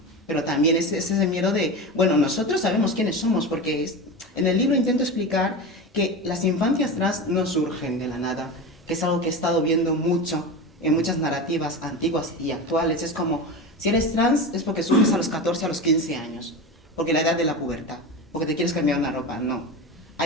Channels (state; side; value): normal; both; correlation 0.25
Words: Pero también es ese miedo de, bueno, nosotros sabemos quiénes somos, porque en el libro intento explicar que las infancias trans no surgen de la nada, que es algo que he estado viendo mucho en muchas narrativas antiguas y actuales. Es como, si eres trans es porque surges a los 14, a los 15 años, porque la edad de la pubertad, porque te quieres cambiar una ropa. No.